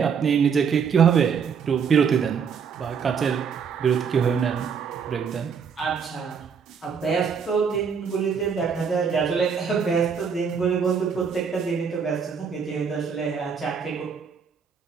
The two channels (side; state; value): left; quieter; 6.5 dB